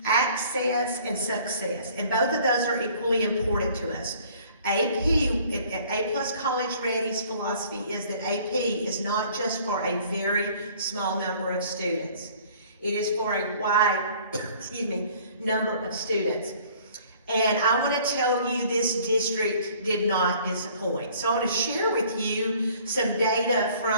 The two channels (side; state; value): both; inverted; correlation -0.54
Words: Access and Success, and both of those are equally important to us. A Plus College Ready's philosophy is that AP is not just for a very small number of students. It is for a wide, number of students. And I want to tell you this district did not disappoint. So I want to share with you some data